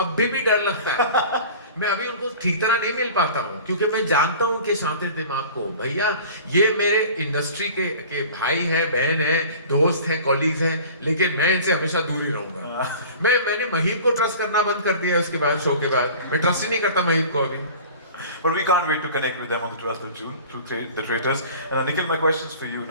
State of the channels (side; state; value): both; inverted; correlation -0.41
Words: भी डर लगता है. मैं अभी उनको ठीक तरह नहीं मिल पाता हूँ क्योंकि मैं जानता हूँ कि शातिर दिमाग को, भैया ये मेरे इंडस्ट्री के भाई हैं, बहन हैं, दोस्त हैं, कॉलीग्स हैं, लेकिन मैं इनसे हमेशा दूर ही रहूंगा. मैंने महीप को ट्रस्ट करना बंद कर दिया उसके बाद, शो के बाद मैं ट्रस्ट ही नहीं करता महीप को अभी. But we can't wait to connect with them on the 12th of June through the Traitors. And Nikhil, my questions for you